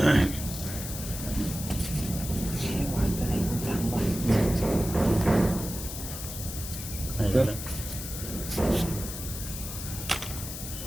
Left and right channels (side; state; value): left; noise; hiss, 8 dB below the sound